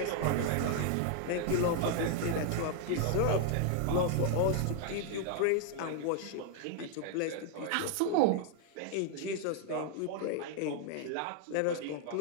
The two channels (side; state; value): both; different; correlation 0.00